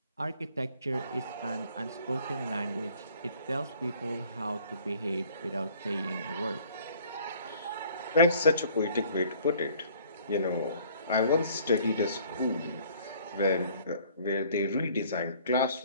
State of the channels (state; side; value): inverted; both; correlation -0.56